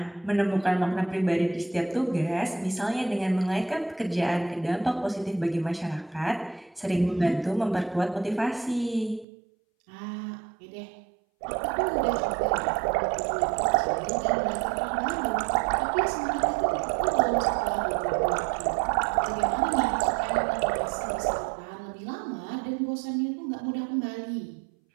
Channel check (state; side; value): drops out; left; at 9.2 s